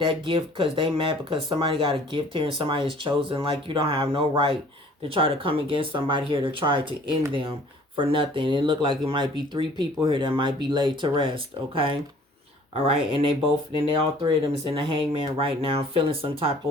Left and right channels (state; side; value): normal; both; correlation 0.52